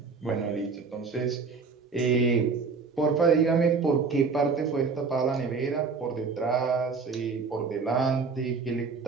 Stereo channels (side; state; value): left; quieter; 4.9 dB